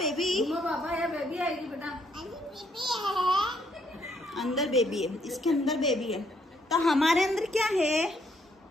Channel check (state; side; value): normal; both; correlation 0.71